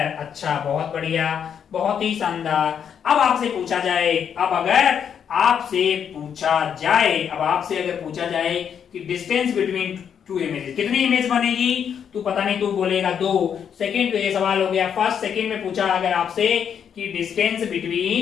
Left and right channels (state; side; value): quieter; right; 8.0 dB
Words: अच्छा, बहुत बढ़िया, बहुत ही शानदार। अब आपसे पूछा जाए, अब आपसे अगर पूछा जाए कि डिस्टेंस बिटवीन 2 इमेजेस, कितनी इमेज बनेगी? तू पता नहीं, तू बोलेगा 2। सेकंड पे ये सवाल हो गया। फर्स्ट सेकंड में पूछा अगर आपसे कि डिस्टेंस